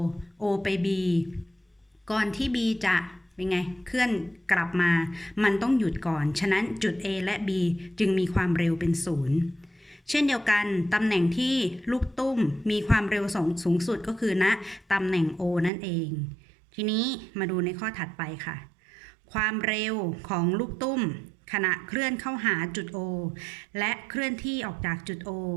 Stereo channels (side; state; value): left; drops out; at 15.7 s